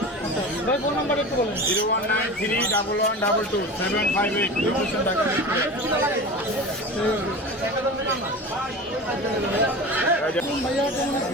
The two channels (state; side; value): normal; both; correlation 0.32